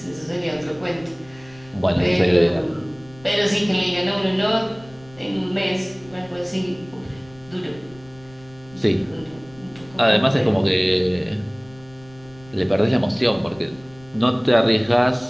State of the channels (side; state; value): left; noise; rumble, 24 dB below the sound